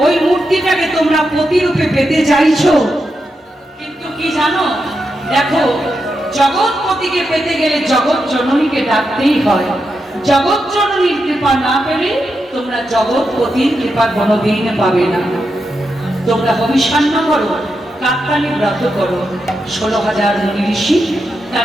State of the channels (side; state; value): both; normal; correlation 0.86